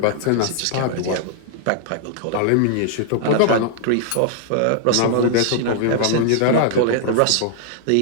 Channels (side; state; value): both; different; correlation -0.01